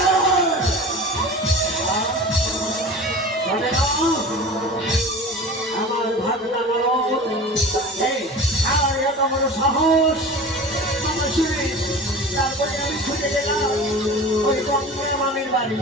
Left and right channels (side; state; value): both; normal; correlation 0.36